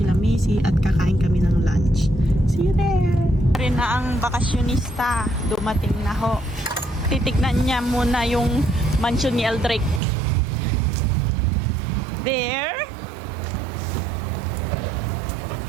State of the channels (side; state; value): left; drops out; at 10.0 s